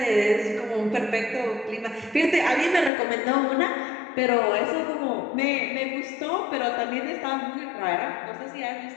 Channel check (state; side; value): drops out; right; at 2.9 s